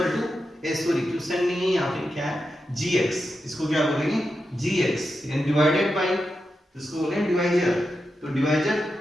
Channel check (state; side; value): normal; both; correlation 0.88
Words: to question नहीं है यहाँ पे, क्या है gx, इसको क्या बोलेंगे gx यानी डिवाइडेड बाय, इसको बोलेंगे डिवाइजर। तो डिवाइजर